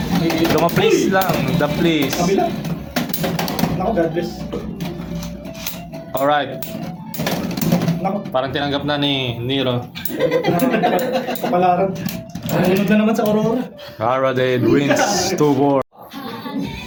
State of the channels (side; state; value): both; identical; correlation 1.00